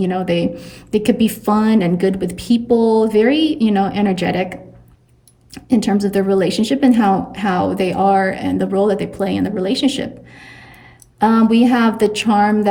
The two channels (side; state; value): both; identical; correlation 1.00